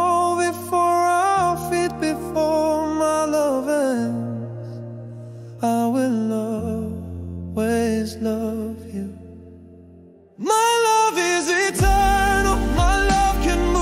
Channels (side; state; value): both; identical; correlation 1.00